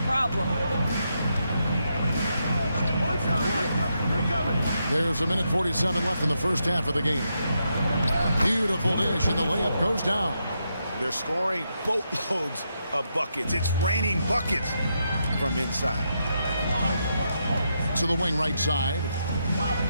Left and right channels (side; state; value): both; inverted; correlation -0.82